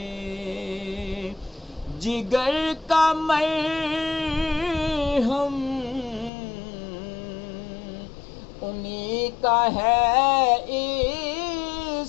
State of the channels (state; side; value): drops out; right; at 6.3 s